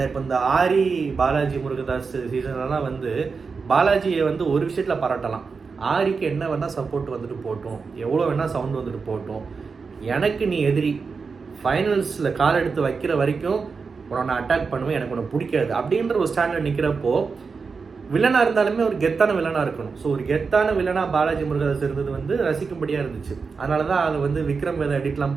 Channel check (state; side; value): quieter; left; 5.0 dB